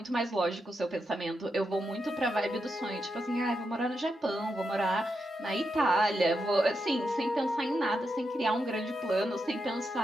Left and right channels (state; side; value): normal; both; correlation 0.85